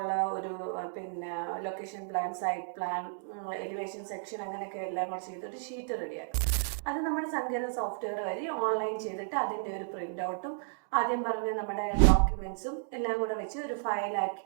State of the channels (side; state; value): left; silent; digital silence